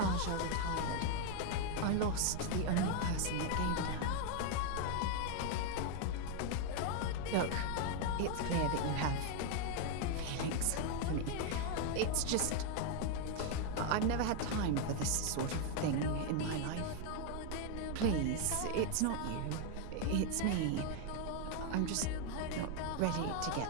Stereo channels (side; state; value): both; different; correlation 0.00